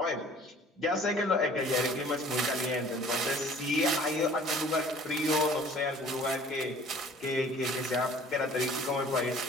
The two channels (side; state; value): both; normal; correlation 0.50